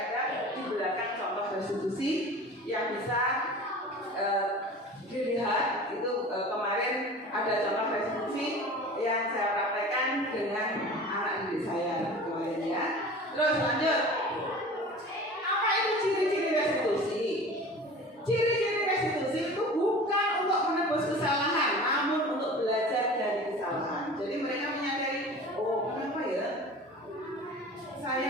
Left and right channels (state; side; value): normal; both; correlation 0.39